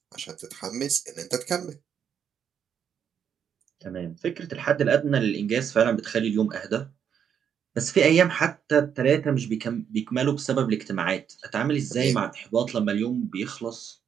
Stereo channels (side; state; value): left; quieter; 8.1 dB